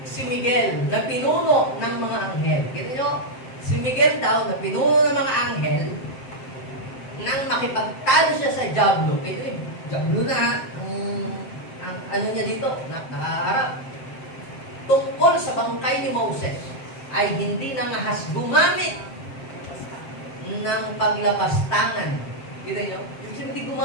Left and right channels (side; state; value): right; late; 7.6 ms